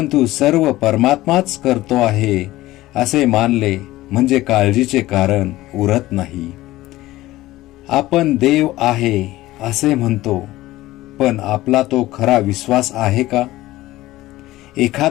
सर्व परमात्माच करतो आहे असे मानले म्हणजे काळजीचे कारण उरत नाही. आपण देव आहे असे म्हणतो, पण आपला तो खरा विश्वास आहे का?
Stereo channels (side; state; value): right; quieter; 17.0 dB